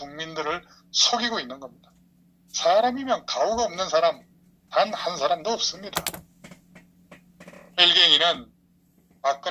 속이고 있는 겁니다. 사람이면 가오가 없는 사람 단 한 사람도 없습니다. 일갱이는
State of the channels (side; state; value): both; identical; correlation 1.00